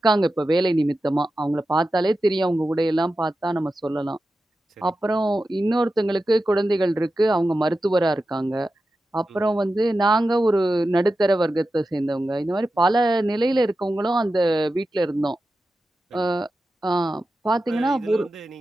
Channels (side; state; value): both; normal; correlation 0.92